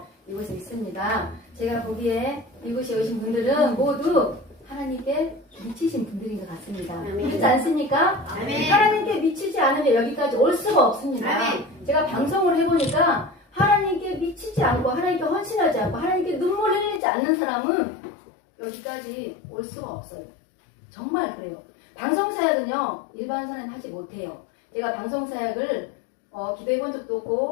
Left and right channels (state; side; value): drops out; right; at 17.0 s